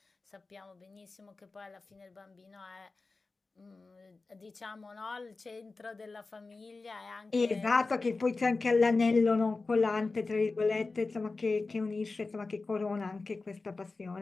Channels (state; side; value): quieter; right; 3.8 dB